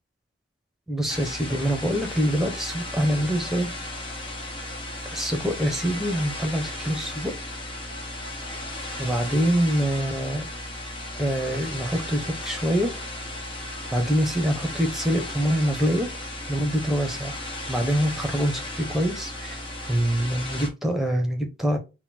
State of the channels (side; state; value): both; normal; correlation 0.78